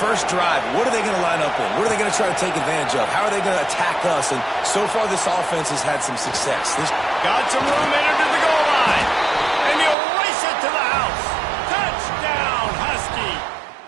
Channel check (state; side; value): drops out; left; at 10.0 s